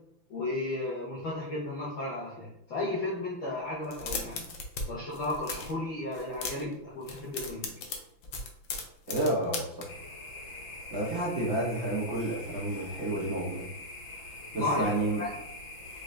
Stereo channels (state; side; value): late; right; 5.9 ms